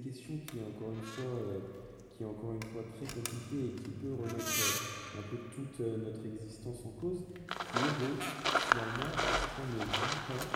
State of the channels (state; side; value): identical; both; correlation 1.00